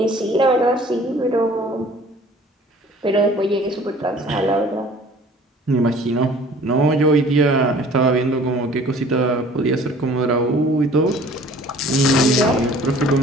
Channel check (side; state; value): both; normal; correlation 0.51